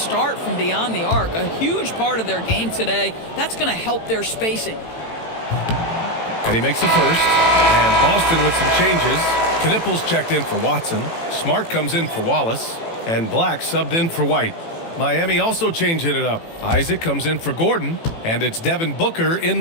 from beyond the arc. A huge part of their game today. That's going to help their spacing. And he makes the first. And Boston with some changes. Knipples checked in for Watson. Smart comes in for Wallace. And Black subbed in for White. Miami also changing it up. Isaac comes in for Gordon. And it's Devin Booker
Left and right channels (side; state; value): right; late; 18 ms